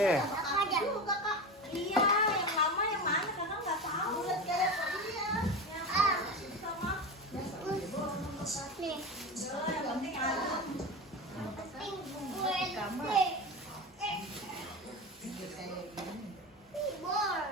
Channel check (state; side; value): normal; both; correlation 0.24